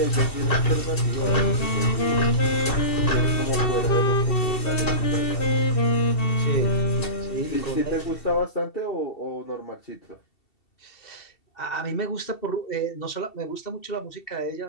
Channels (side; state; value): right; late; 2.7 ms